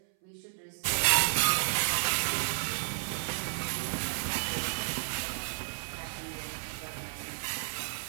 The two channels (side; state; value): left; silent; 56 dB below the other